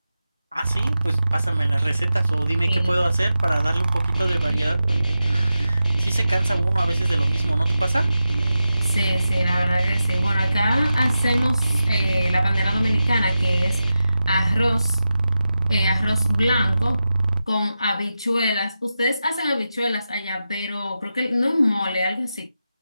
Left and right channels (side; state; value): both; inverted; correlation -0.91